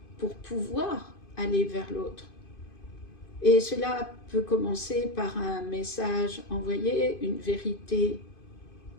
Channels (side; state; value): right; late; 2.5 ms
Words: pour pouvoir aller vers l'autre. Et cela peut commencer par un message envoyé, une vérité